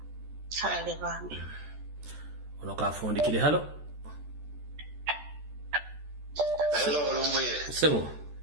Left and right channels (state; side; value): late; left; 14 ms